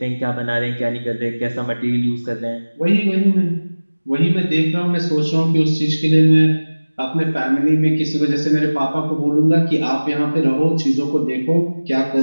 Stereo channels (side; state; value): both; inverted; correlation -1.00